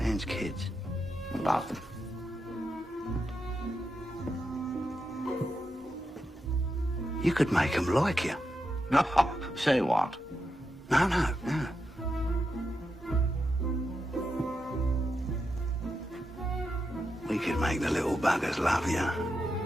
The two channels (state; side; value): normal; both; correlation 0.86